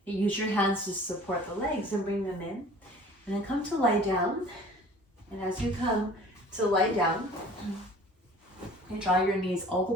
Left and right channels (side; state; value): both; normal; correlation 0.47